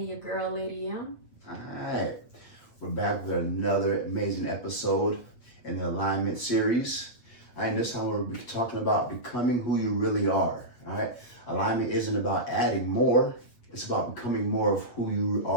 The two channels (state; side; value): late; right; 8.5 ms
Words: your girl, Lady M. All right, we're back with another amazing episode in the alignment series. All right, this time we're talking about becoming who you really are. All right, alignment isn't about adding more, it's about becoming more of who you